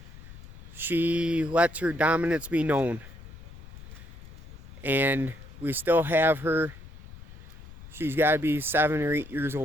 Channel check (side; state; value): left; noise; rumble, 16 dB below the sound